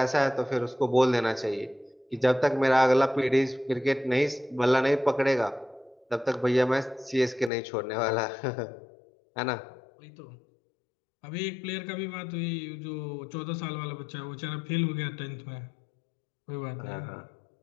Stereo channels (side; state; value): right; drops out; at 7.5 s